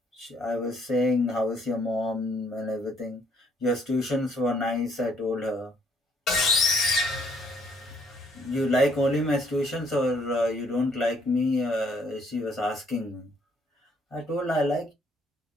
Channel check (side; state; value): both; normal; correlation 0.67